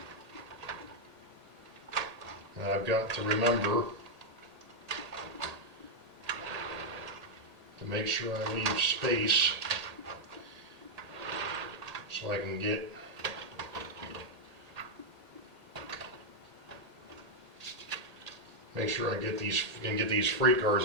And I've got to remember to make sure I leave space so I can get make sure I get these freight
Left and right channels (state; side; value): late; left; 1.8 ms